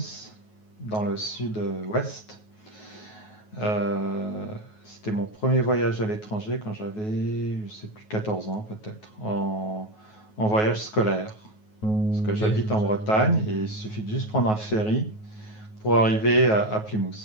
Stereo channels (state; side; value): late; right; 9.4 ms